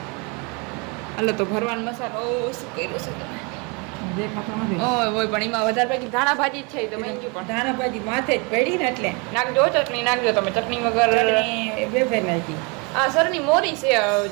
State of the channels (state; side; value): quieter; left; 31.2 dB